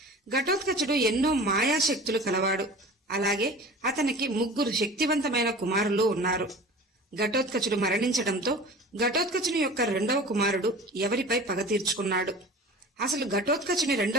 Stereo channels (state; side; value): normal; both; correlation 0.39